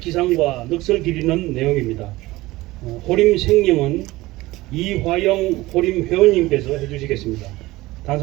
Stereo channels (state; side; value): quieter; left; 19.0 dB